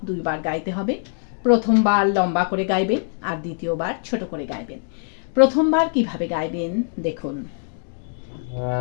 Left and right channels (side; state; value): right; silent; digital silence